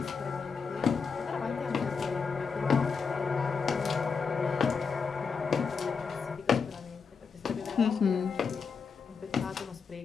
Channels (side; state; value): right; quieter; 5.6 dB